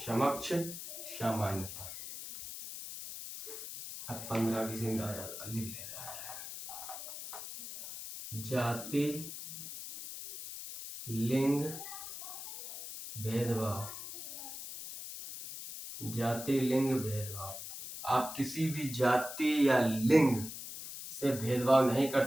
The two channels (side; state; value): left; noise; hiss, 9 dB below the sound